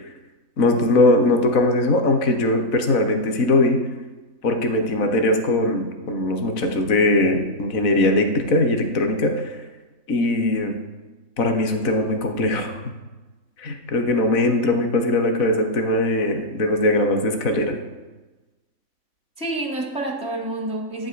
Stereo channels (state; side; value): late; right; 4.0 ms